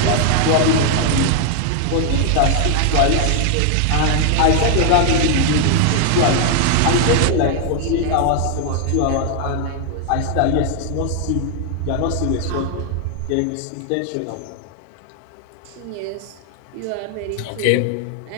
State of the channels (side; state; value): both; different; correlation 0.00